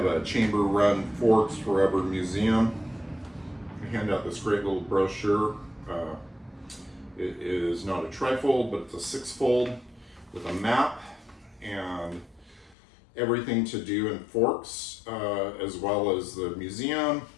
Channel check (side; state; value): right; drops out; at 12.8 s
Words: a chamber-run Forks Forever museum. They hand out this great little brochure. It is not a trifold, but it's a six-fold with a map and everything to do in Forks, as well as the museum.